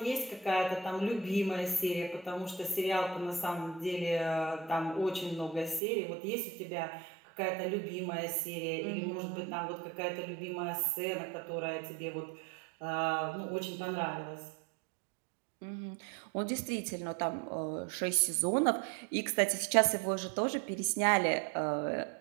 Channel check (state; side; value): drops out; left; at 5.8 s